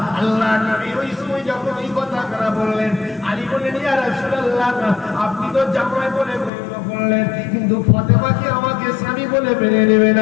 আল্লাহ নবী ওই সময় যখন এই কথাটা বললেন আলী বললেন ইয়া রাসূলুল্লাহ আপনি তো জামাই বলে গণ্য করলেন কিন্তু ফাতেমাকে আমাকে স্বামী বলে মেনে নেবে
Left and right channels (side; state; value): right; drops out; at 6.5 s